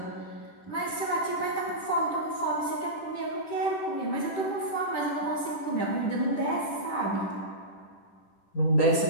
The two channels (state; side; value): late; right; 10 ms